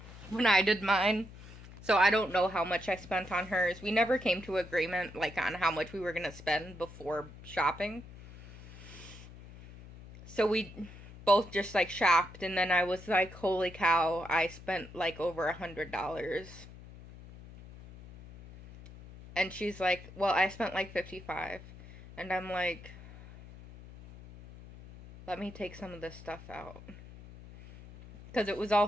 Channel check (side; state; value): left; noise; hum, 17 dB below the sound